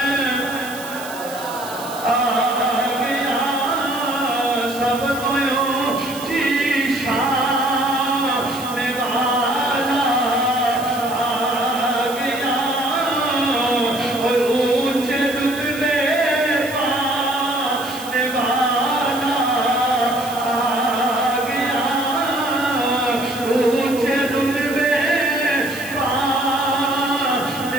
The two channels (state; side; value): noise; right; hiss, 14 dB below the sound